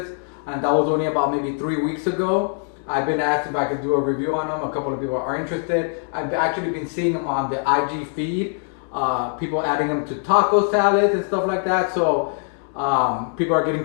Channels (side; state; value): right; silent; 55 dB below the other